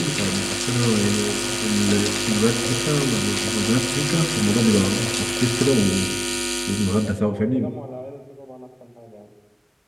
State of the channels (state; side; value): identical; both; correlation 1.00